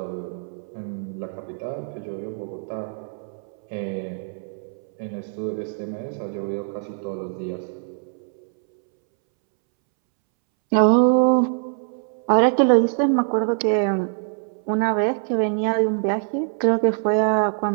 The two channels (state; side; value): silent; left; 63 dB below the other